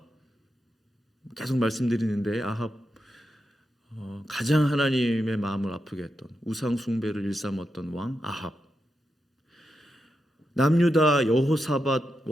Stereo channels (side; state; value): both; normal; correlation 0.87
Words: 계속 말씀드리는데 아합 가장 하나님의 마음을 아프게 했던 우상 숭배를 일삼았던 왕 아합. 남유다 여호사밧